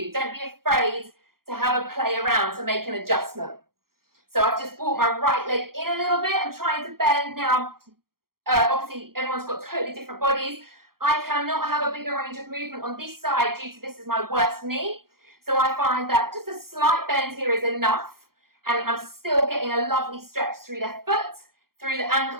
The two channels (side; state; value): left; late; 0.93 ms